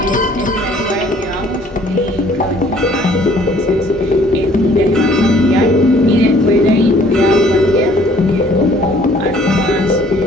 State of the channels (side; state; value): both; normal; correlation 0.58